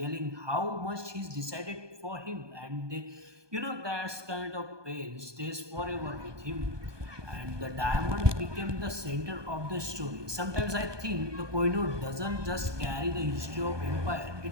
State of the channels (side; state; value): left; late; 1.2 ms